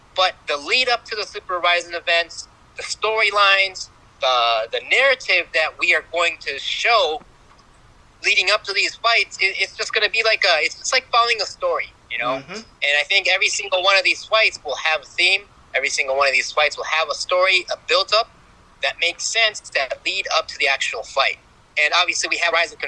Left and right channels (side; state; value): both; identical; correlation 1.00